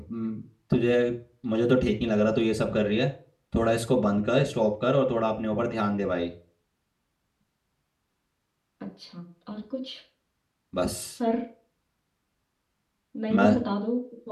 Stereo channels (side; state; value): both; identical; correlation 1.00